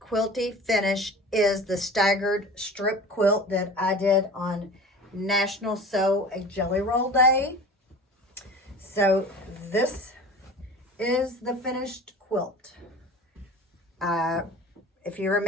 quilty finish is the staggered strip quilt that I did on National Sew a Jelly Roll Day. So this is the finished quilt. If you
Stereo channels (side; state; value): both; normal; correlation 0.38